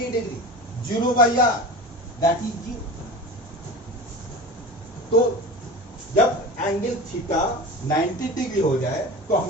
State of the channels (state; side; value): normal; both; correlation 0.33